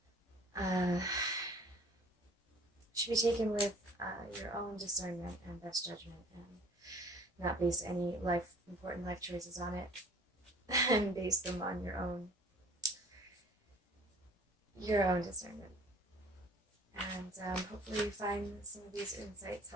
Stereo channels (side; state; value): both; normal; correlation 0.50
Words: should be taken with your own discernment and best judgment, and not base any important life choices on it, and base them on your own discernment. And hopefully you find some of these insights